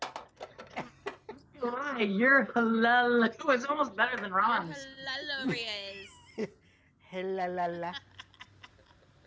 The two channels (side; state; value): both; identical; correlation 1.00